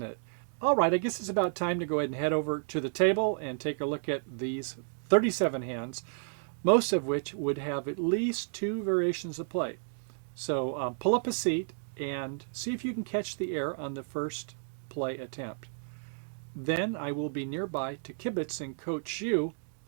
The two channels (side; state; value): left; silent; digital silence